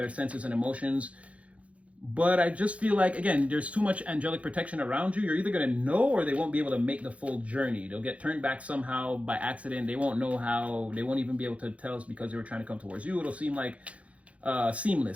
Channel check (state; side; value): late; left; 0.064 ms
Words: senses and emotions. But I just feel like, again, there's too much angelic protection around you. You're either going to know or they won't be able to make the full journey. They'll get turned back somehow by accident. They won't know how. They won't even be able to tell us because they were trying to come towards you. It'll seem like